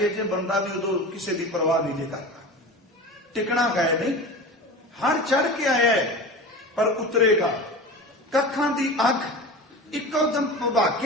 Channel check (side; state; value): both; normal; correlation 0.32